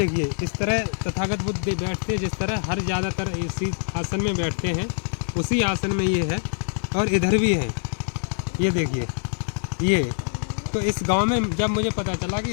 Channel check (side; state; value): right; silent; digital silence